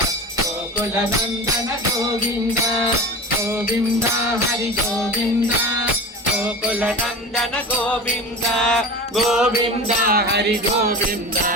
गोकुल नंदन गोविंद गोविंद हरि गोविंद गोकुल नंदन गोविंद गोविंद हरि गोविंद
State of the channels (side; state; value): both; normal; correlation 0.31